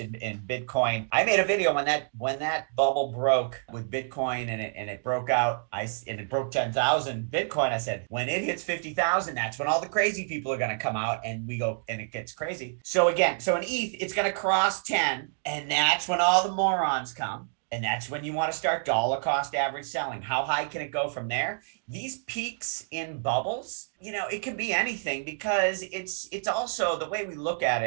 Bitcoin. I made a video when that bubble broke with Bitcoin and it broke out. And it broke 10,000 Bitcoin. I said, when it hits 50,000, that's when all the crazy people are going to come out and it gets crazy. So in ETH, it's going to cross 10, and that's when all the morons come. And that's when you want to start dollar cost average selling. How high can it go from there? These peaks in bubbles, it can be anything, because it's also the way we look at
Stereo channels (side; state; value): left; silent; digital silence